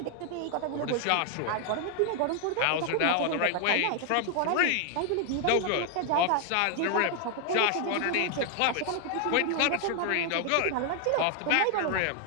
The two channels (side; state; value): both; different; correlation 0.00